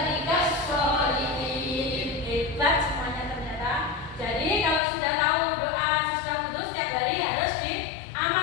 sholihin. Hebat semuanya ternyata. Jadi kalau sudah tahu doa sesudah wudhu setiap hari harus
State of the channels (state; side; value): drops out; right; at 4.8 s